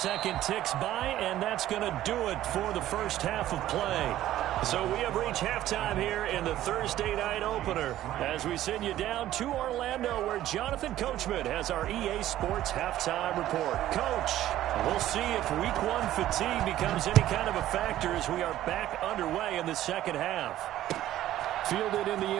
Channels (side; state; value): left; quieter; 13.5 dB